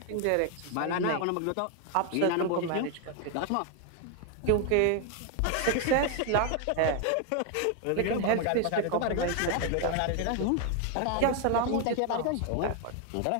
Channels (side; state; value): both; different; correlation 0.01